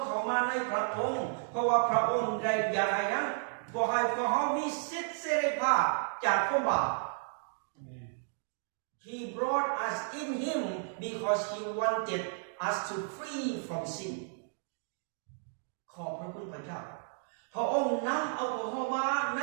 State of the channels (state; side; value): silent; left; digital silence